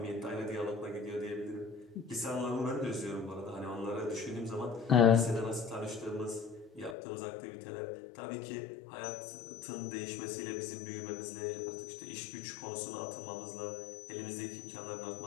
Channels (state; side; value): drops out; right; at 7.0 s